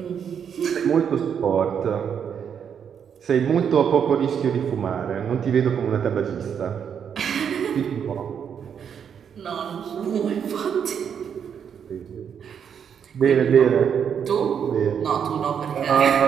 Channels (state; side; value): quieter; left; 7.8 dB